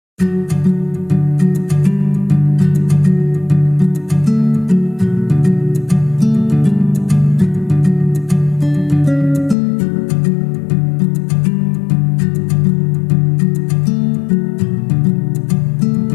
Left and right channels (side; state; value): right; drops out; at 9.6 s